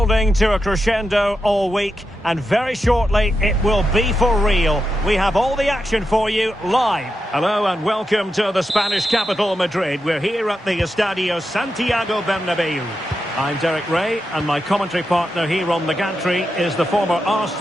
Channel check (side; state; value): both; normal; correlation 0.88